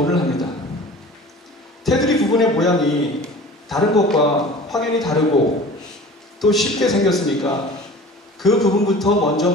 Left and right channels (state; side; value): normal; both; correlation 0.42